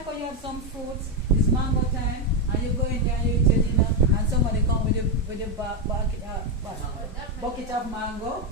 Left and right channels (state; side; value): normal; both; correlation 0.05